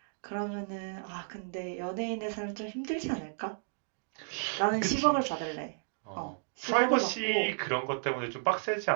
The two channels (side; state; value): left; silent; digital silence